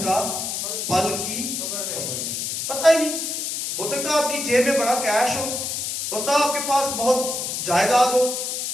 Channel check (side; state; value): left; noise; hiss, 3 dB below the sound